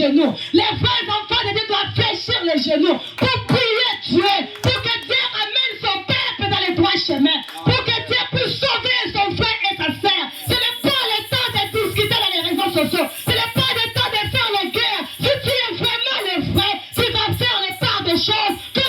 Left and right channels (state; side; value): identical; both; correlation 1.00